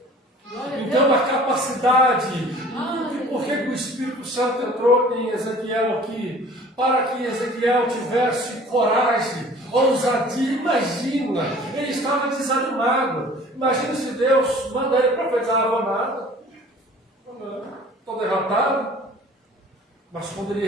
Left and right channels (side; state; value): both; normal; correlation 0.48